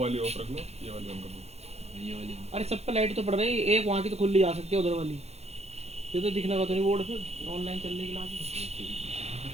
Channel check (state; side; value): late; left; 0.31 ms